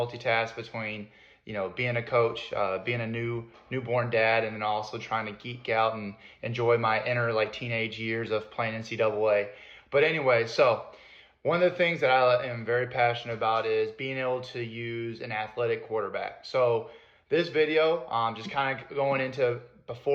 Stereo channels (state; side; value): identical; both; correlation 1.00